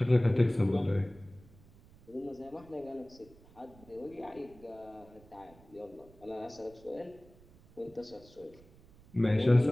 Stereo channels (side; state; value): right; noise; rumble, 24 dB below the sound